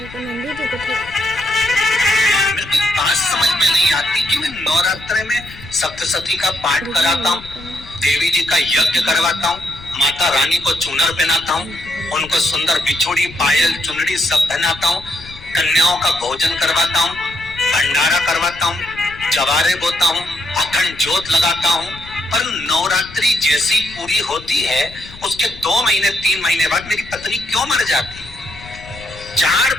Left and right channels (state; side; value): noise; left; rumble, 18 dB below the sound